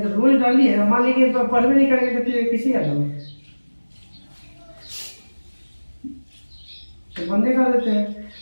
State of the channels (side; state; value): both; inverted; correlation -1.00